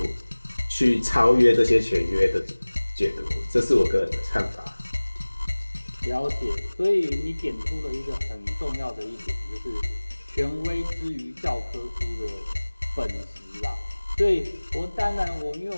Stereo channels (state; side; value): inverted; both; correlation -1.00